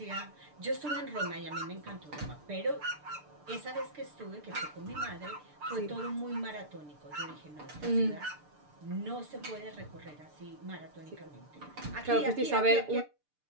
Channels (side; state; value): left; late; 6.7 ms